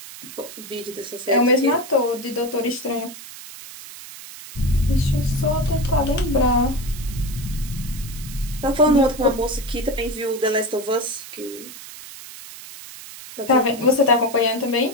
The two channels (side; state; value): right; noise; hiss, 14 dB below the sound